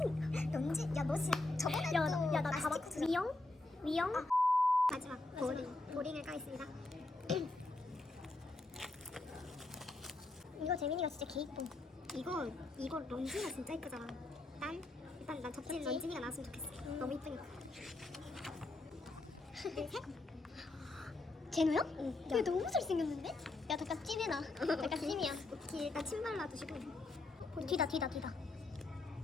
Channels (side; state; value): right; quieter; 3.0 dB